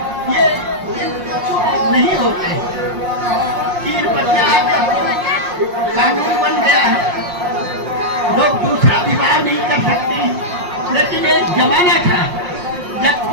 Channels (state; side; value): late; left; 5.6 ms